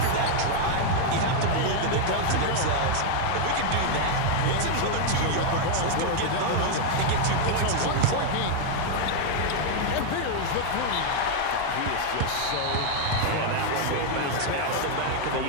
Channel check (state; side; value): different; both; correlation 0.00